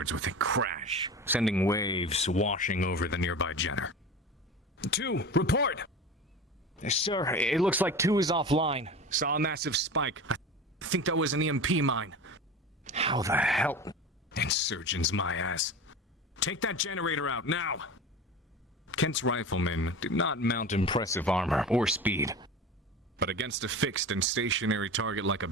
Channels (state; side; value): normal; both; correlation 0.32